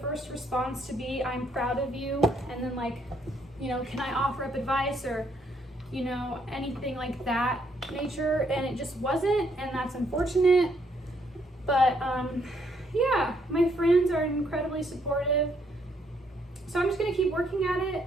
response to be, I'm proud of you, and then like, you know, can I offer up advice, or you know, anything like that nature, and it just wasn't, and that's unfortunate. But yeah, my friends are incredibly supportive, so I'm just gonna keep working at it.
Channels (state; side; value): normal; both; correlation 0.71